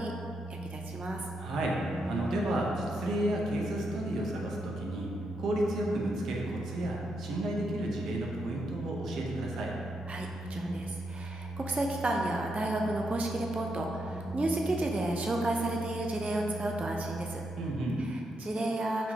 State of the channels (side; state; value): both; normal; correlation 0.81